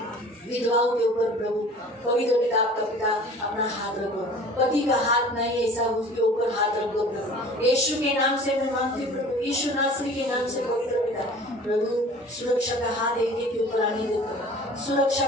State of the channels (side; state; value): both; normal; correlation 0.45